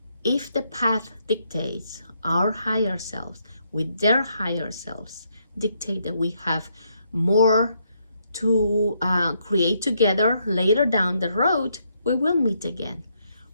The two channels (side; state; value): both; inverted; correlation -0.75